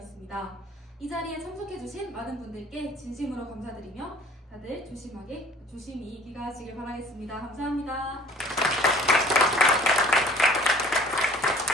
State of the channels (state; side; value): normal; both; correlation 0.51